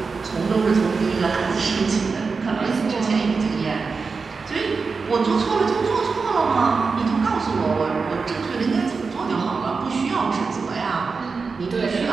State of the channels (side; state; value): left; quieter; 4.7 dB